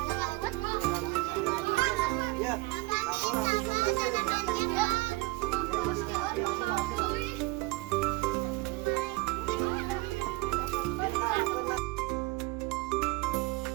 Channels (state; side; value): quieter; left; 23.0 dB